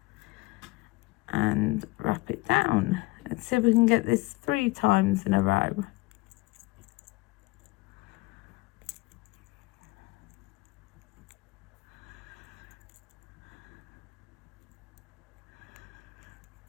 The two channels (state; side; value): quieter; right; 22.1 dB